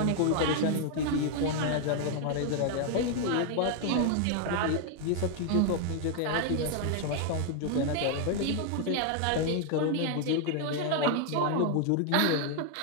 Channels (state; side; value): different; both; correlation 0.00